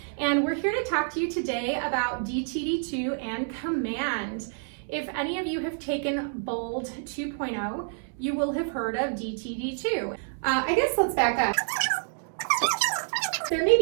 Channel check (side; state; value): left; silent; digital silence